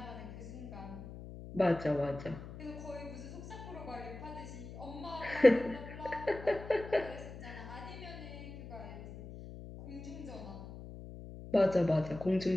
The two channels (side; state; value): left; noise; hum, 12 dB below the sound